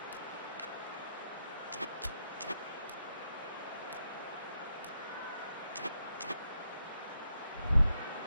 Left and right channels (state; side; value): inverted; both; correlation -0.82